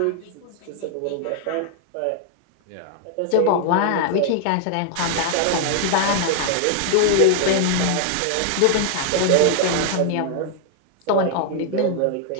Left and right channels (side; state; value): both; different; correlation 0.00